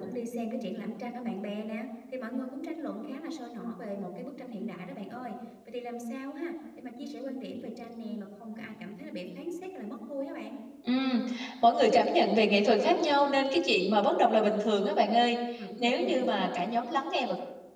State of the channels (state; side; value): identical; both; correlation 1.00